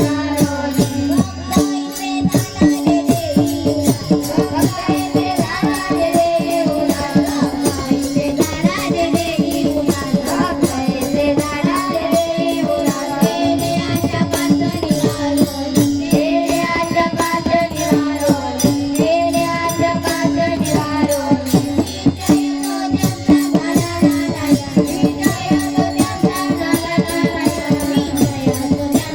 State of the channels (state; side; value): identical; both; correlation 1.00